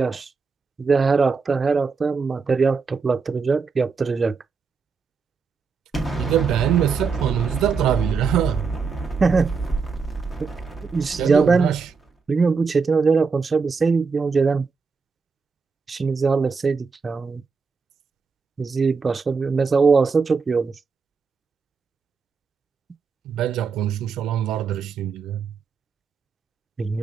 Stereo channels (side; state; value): left; quieter; 5.1 dB